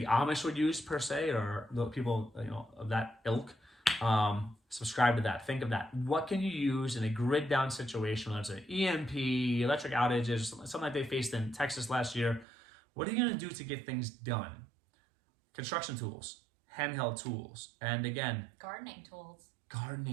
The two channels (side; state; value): left; drops out; at 12.5 s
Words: Amish would use per se, or the people of that ilk. Subscribe to that. Think of that. What can you use in a grid down situation, whether it's an EMP, electric outages, something like they faced in Texas last year? What are you going to do to get things done? Construction tools, handheld tools, and again, gardening